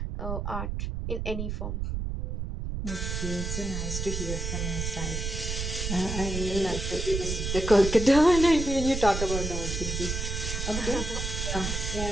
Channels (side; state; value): right; noise; rumble, 3 dB below the sound